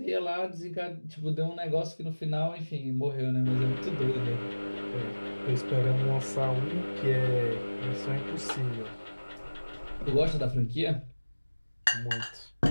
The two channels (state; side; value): inverted; both; correlation -1.00